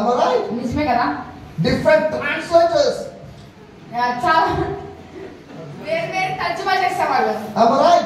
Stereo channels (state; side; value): identical; both; correlation 1.00